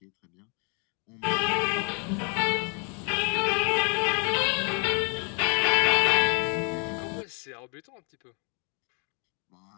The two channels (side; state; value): right; quieter; 36.9 dB